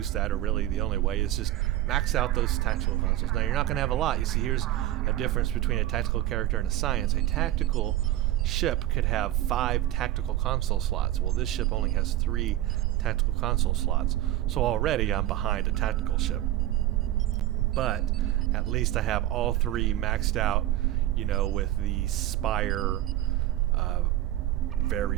that, or really the only way, is just max out those tactical consoles. Now you're not going to have a lot. You see, here's a difference between a tactical character and a science. A tactical ship could have 5 tactical console slots. Well, this ship only has 3 tactical console slots, so already I'm behind a tactical ship. But at least I have all 3 maxed out, you know, with the Spire,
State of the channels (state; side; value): quieter; left; 14.2 dB